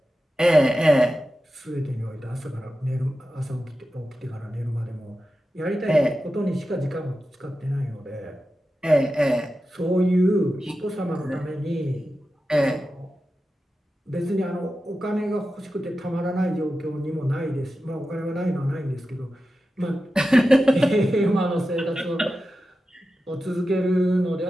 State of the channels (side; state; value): both; normal; correlation 0.92